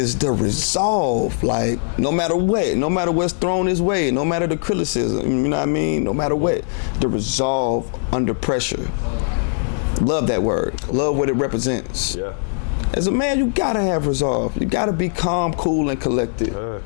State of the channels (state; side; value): silent; right; digital silence